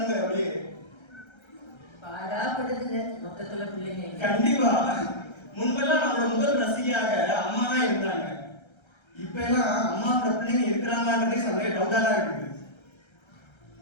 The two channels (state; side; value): late; right; 1.3 ms